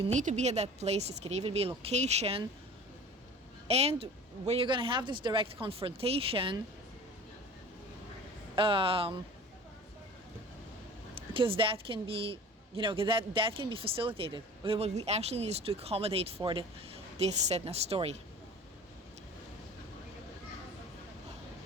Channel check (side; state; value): both; normal; correlation 0.41